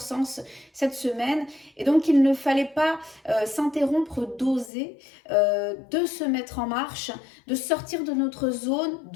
cette semaine. Et donc il ne fallait pas s'interrompre d'oser, de se mettre en marche, de sortir de notre zone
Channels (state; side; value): drops out; right; at 4.7 s